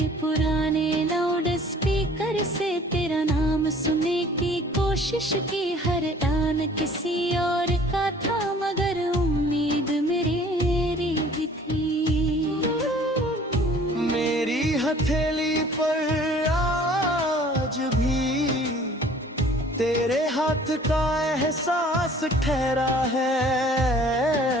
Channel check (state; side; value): normal; both; correlation 0.52